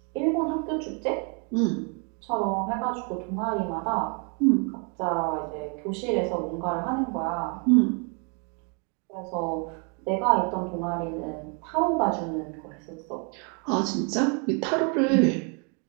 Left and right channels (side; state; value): left; quieter; 36.9 dB